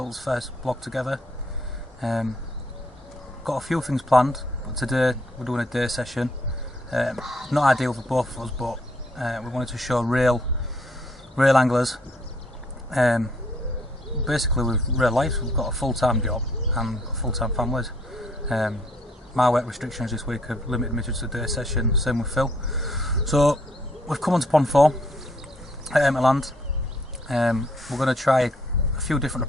first vlog together. Got a few things planned, but today we're doing a day session. Not ideal for both of us, but we wanted to show real anglers. Basically with real life, we've got a full-time job and full-time families. My work restrictions this week have limited me to just a day session, same with Phil. So we've come on to Pond 4 at Emmotland. We're going to try a few different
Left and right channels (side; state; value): both; normal; correlation 0.67